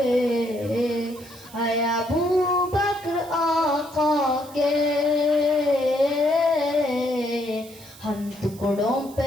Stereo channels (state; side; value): noise; right; hiss, 20 dB below the sound